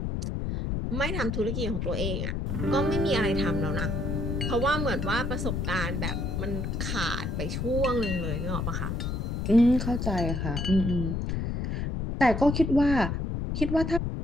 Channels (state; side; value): noise; left; rumble, 1 dB below the sound